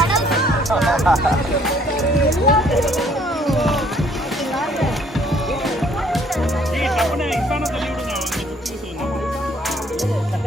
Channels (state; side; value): normal; both; correlation 0.62